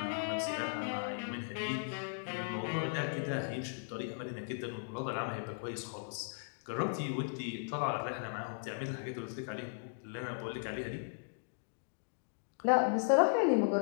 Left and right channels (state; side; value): silent; right; digital silence